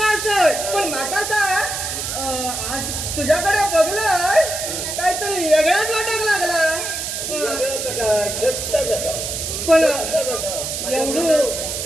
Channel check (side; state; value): right; noise; hiss, 4 dB below the sound